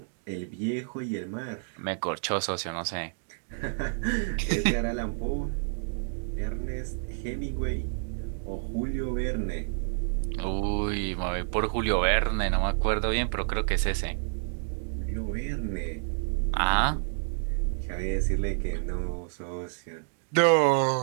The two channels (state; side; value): silent; left; digital silence